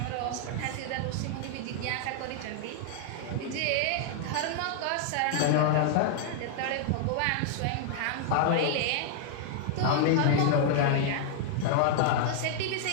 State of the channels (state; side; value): different; both; correlation -0.01